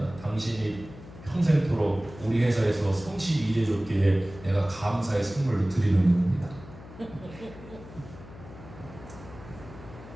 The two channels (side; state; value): left; noise; hum, 17 dB below the sound